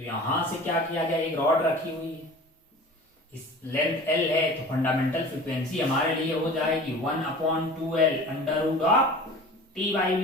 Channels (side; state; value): both; normal; correlation 0.40